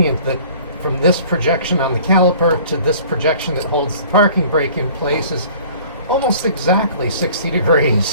that from this projection on the caliper to this projection that holds the parking brake in place is almost exactly 60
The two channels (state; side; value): inverted; both; correlation -0.50